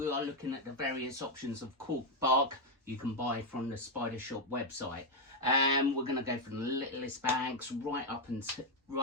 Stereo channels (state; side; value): normal; both; correlation 0.02